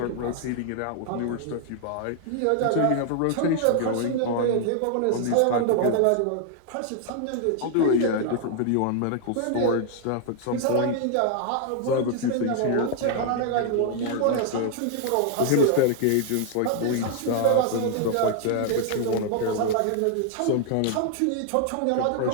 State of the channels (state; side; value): different; both; correlation 0.00